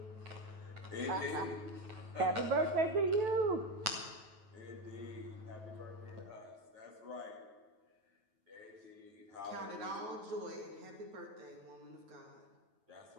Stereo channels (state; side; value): late; left; 9.2 ms